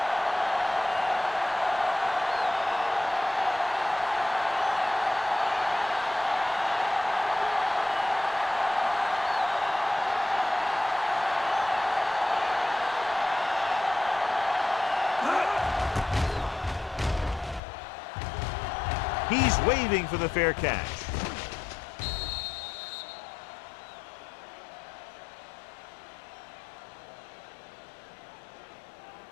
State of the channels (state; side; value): drops out; right; at 17.6 s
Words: He's waving for the fair catch.